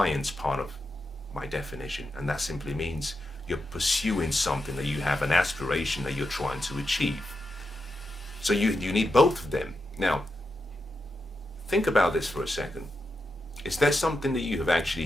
part of my definition. And that simply means you're pursuing something, that you have an aspiration that you're trying to achieve. So you need both of them. Now, think about this for a second. Is there something that you have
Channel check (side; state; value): both; normal; correlation 0.87